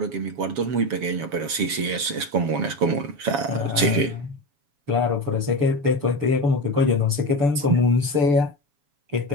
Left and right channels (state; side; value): late; left; 7.2 ms